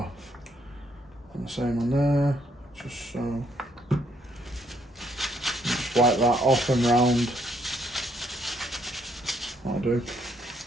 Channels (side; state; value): both; normal; correlation 0.71